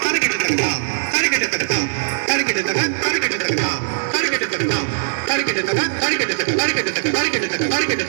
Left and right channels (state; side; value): silent; left; 66 dB below the other